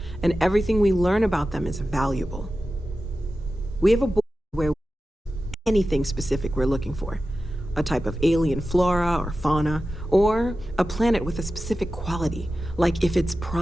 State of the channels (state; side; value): normal; both; correlation 0.93